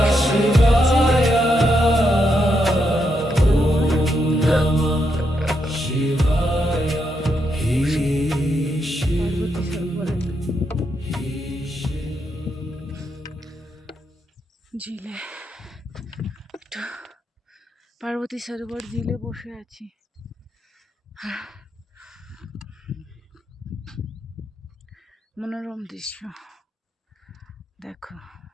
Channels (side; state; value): both; normal; correlation 0.81